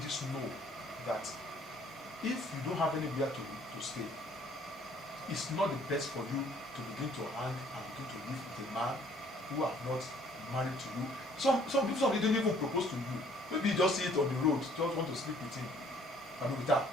know that if you don't have anywhere to stay, it's not the best for you to begin to hang and begin to live with a man who have not married to you. Some people don't even propose to you. Maybe you just see it on the road, just want to sleep with him, I mean with her.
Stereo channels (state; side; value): normal; both; correlation 0.59